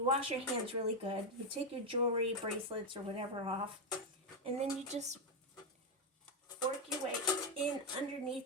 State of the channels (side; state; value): both; normal; correlation 0.05